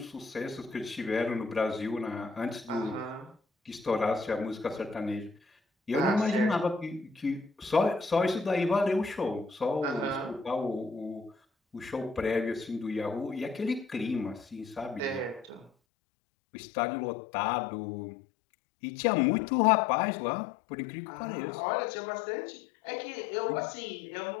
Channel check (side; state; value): right; drops out; at 15.7 s